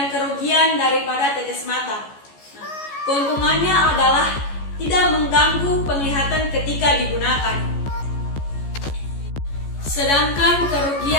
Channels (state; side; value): late; right; 14 ms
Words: kerugian daripada tetes mata. Keuntungannya adalah tidak mengganggu penglihatan ketika digunakan. Sedangkan